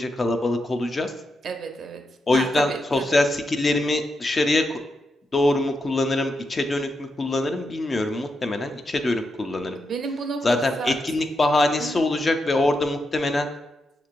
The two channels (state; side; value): normal; both; correlation 0.85